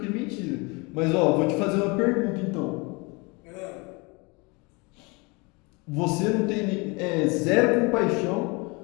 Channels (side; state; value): right; quieter; 28.3 dB